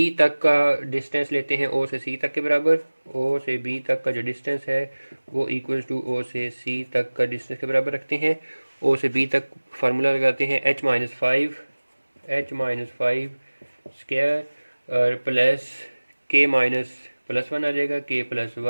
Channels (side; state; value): both; inverted; correlation -1.00